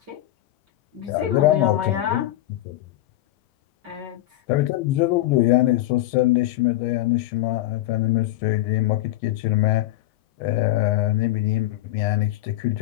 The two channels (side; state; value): right; quieter; 15.0 dB